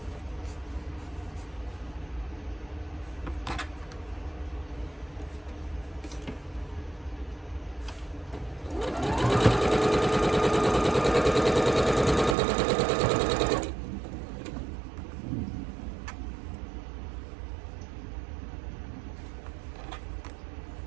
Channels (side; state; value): left; drops out; at 12.4 s